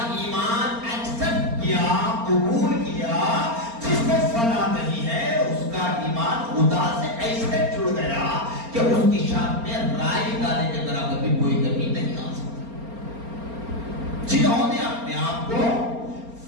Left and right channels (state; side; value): late; left; 4.3 ms